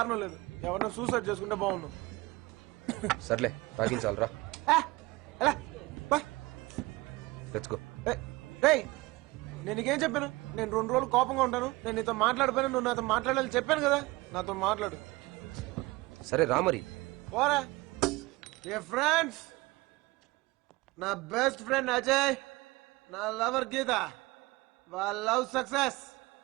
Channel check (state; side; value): quieter; left; 22.1 dB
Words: లేదు. ఎవరైనా సూసైడ్ చేసుకుంటే బాగుండు. సర్లే తాగించాలరా. తెచ్చుకో. నేను నీకేం చెప్పాను? నేను 2 రోజులు కోపంగా ఉంటాను, నేను నీతో మాట్లాడిపోయినా నువ్వు నాతో మాట్లాడాలని చెప్పాను కదా. నాతో మాట్లాడు. సరే రా మరి. పోరా. ఏ ఫ్రెండ్స్, నా బెస్ట్ ఫ్రెండ్ అజయ్, నా లవర్ గీత, వాళ్ళ లవ్ సక్సెస్.